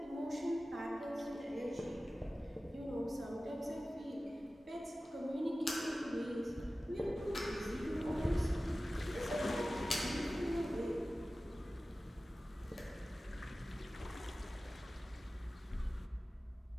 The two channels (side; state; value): both; normal; correlation 0.96